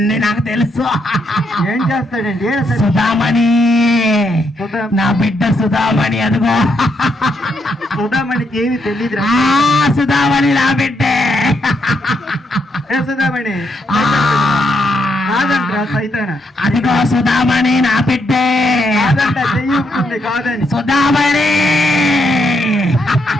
నాకు తెలుసు. ఏం చేస్తాడండి? సుధామణి, నా బిడ్డ సుధామణి. అదిగో సుధామణికి ఏమి తెలియదు. సుధామణి నా బిడ్డే. ఏ సుధామణి? కాదంటరా సైతాన. అదిగో సుధామణి నా బిడ్డే. కాదంట, చెయ్యి కాదని. సుధామణి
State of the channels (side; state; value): both; normal; correlation 0.77